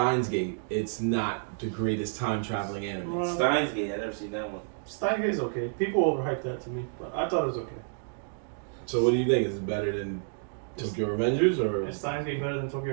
Gate, it's not the greatest time traveling anime. Steins Gate, I never seen that one. Steins Gate is okay. People overhyped that to me, but I thought it was okay. So what do you think? Is it better than Tokyo Revengers or? Is Steins Gate better than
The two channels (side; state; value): left; silent; digital silence